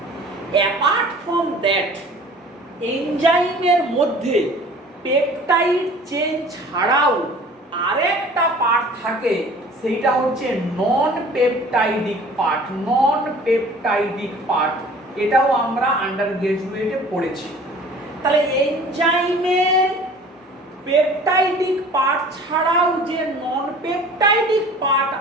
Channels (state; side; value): normal; both; correlation 0.47